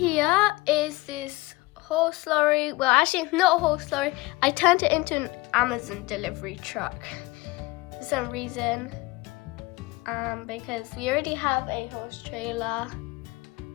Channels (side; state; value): right; quieter; 21.8 dB